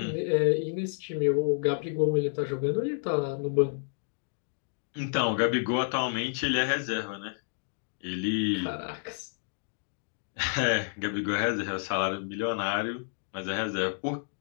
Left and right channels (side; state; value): right; silent; digital silence